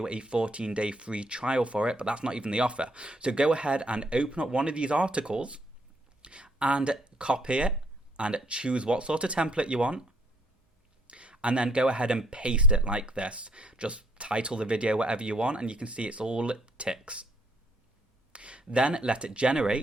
a 14-day free trial for it, but that's not even the offer. So go ahead and open up one of these articles and copy it and choose what sort of template you want. And then go ahead and paste it like this. Just title the video whatever you want, and you can see it's all ticks. Then let it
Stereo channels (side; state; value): both; normal; correlation 0.68